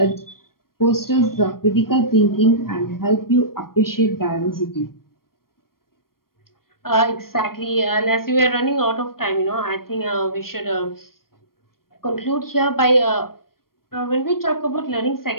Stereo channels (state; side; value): late; right; 0.93 ms